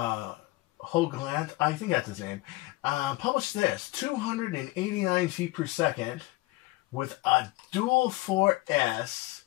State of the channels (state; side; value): quieter; right; 20.7 dB